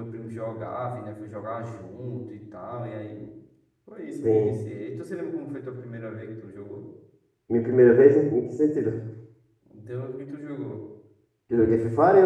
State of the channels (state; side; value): identical; both; correlation 1.00